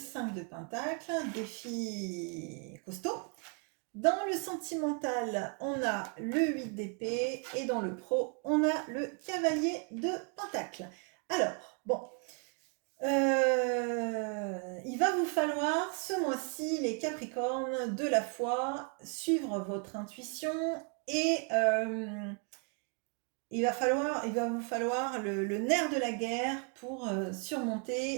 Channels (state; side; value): quieter; left; 38.3 dB